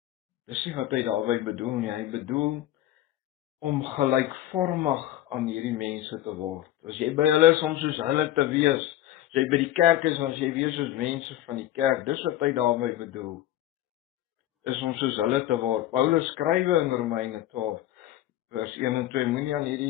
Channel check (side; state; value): right; quieter; 13.5 dB